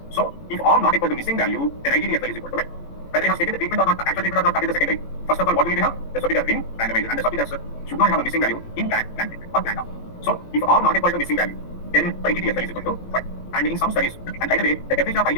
So, if ARM not equal to missing value, then ITTFL is equal to 1. Whether he has taken the treatment or not, actual treatment or not, that is the secondary. First of all, what we need to have? The subject has been randomized, and the subject should not have a missing value in plan treatment or planned ARM. So, if ARM not equal to missing value, then ITTFL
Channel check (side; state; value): right; late; 18 ms